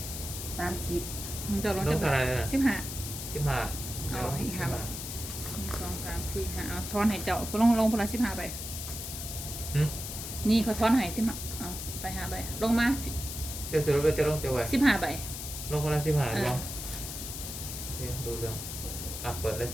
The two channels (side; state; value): left; noise; hiss, 7 dB below the sound